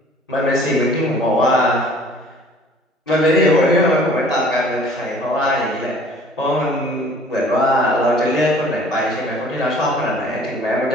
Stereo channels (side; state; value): both; normal; correlation 0.52